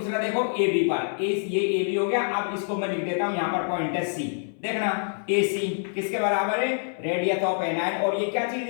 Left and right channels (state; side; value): silent; right; 60 dB below the other